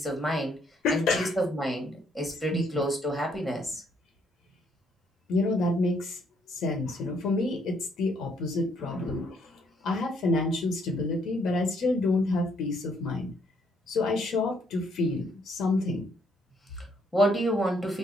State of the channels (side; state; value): both; normal; correlation 0.70